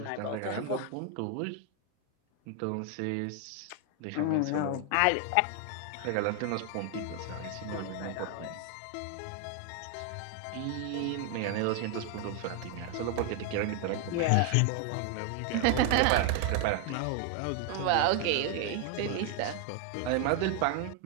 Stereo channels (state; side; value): different; both; correlation 0.00